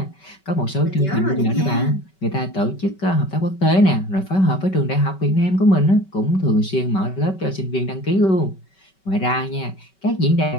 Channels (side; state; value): right; late; 5.3 ms